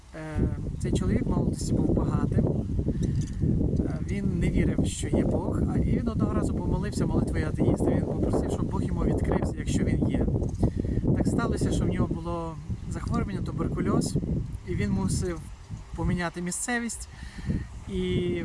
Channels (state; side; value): identical; both; correlation 1.00